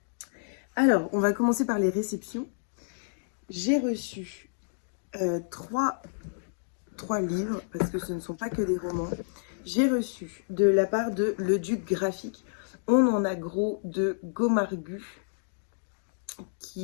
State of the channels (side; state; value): right; silent; digital silence